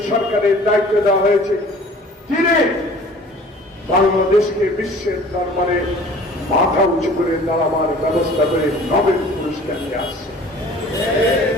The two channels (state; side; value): normal; both; correlation 0.48